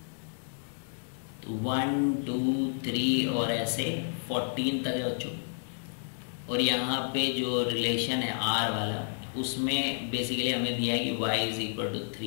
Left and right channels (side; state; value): right; silent; digital silence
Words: 1 2 3 और ऐसे 14 तक है बच्चों। और यहाँ पे जो रिलेशन है R वाला, उसमें बेसिकली हमें दिया है कि y is equal to